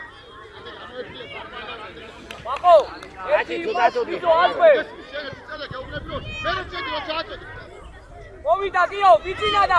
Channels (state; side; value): identical; both; correlation 1.00